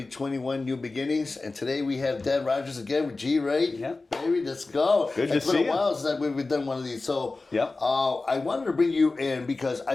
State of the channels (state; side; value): quieter; right; 3.5 dB